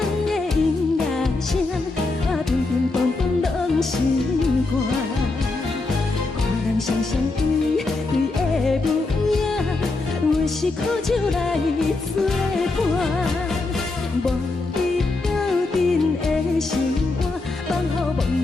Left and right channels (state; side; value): quieter; right; 3.4 dB